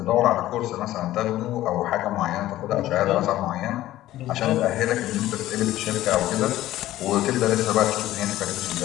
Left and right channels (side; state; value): right; quieter; 14.7 dB